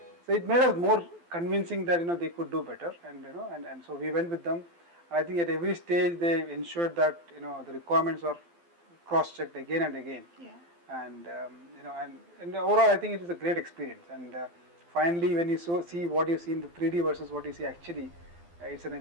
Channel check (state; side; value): late; left; 12 ms